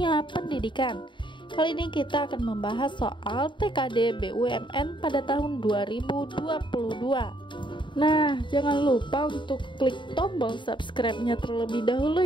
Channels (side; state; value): right; late; 0.23 ms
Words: pendidikan. Kali ini kita akan membahas soal TKD BUMN pada tahun 2022. Nah, jangan lupa untuk klik tombol subscribe-nya terlebih dahulu